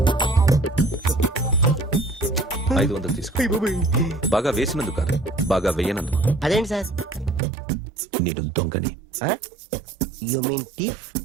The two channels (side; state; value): left; drops out; at 7.4 s